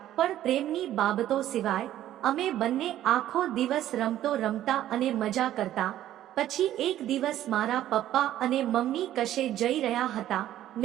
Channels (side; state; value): left; quieter; 12.6 dB